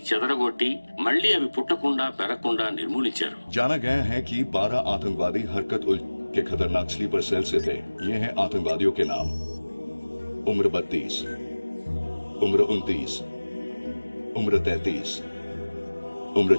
చెదరగొట్టి మళ్లీ అవి పుట్టకుండా పెరగకుండా నిర్మూలించారు. जाना गया है कि 12 आतंकवादी हरकत उल के खतरनाक स्लीपर सेल से थे. ये हैं आतंकवादियों के नाम: उम्र 32, उम्र 29, उम्र 33, उम्र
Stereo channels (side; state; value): both; inverted; correlation -1.00